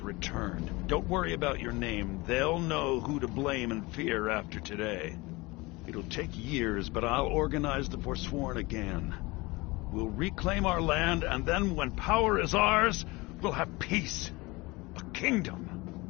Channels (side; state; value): right; quieter; 23.2 dB